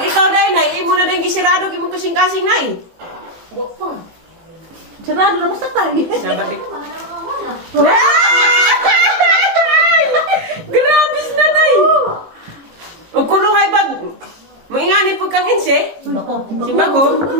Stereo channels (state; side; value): late; left; 18 ms